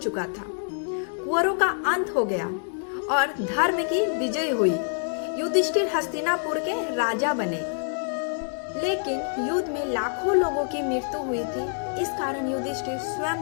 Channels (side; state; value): right; silent; digital silence